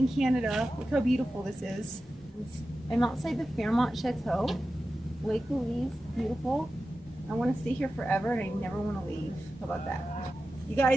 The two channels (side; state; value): both; normal; correlation 0.93